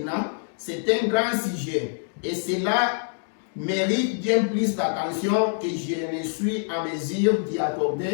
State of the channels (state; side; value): silent; right; digital silence